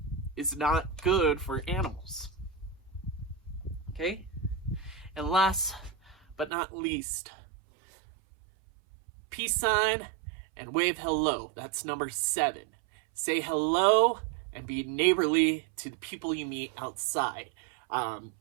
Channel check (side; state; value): left; drops out; at 6.5 s